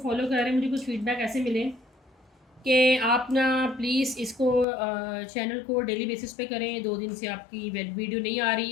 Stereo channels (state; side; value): drops out; right; at 4.7 s